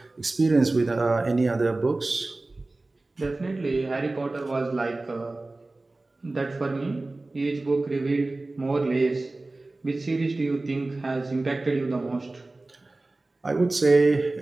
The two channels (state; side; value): quieter; left; 3.1 dB